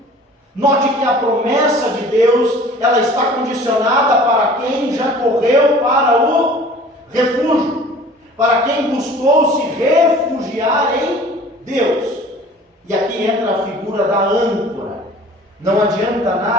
Note que a promessa de Deus, ela está condicionada para quem já correu para o refúgio, para quem buscou se refugiar em Deus. E aqui entra a figura da âncora. Não adianta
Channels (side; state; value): both; normal; correlation 0.47